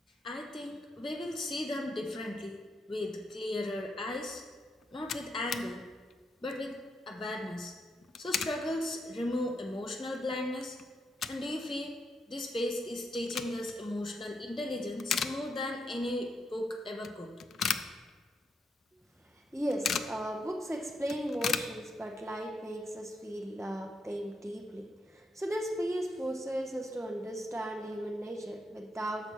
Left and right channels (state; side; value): normal; both; correlation 0.80